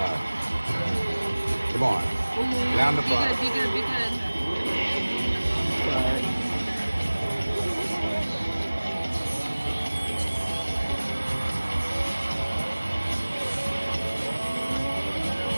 Come on. Down the front. Be good, be good. Sorry.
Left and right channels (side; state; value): both; inverted; correlation -1.00